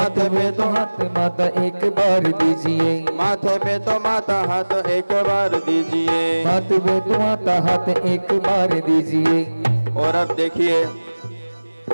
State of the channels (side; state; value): both; inverted; correlation -1.00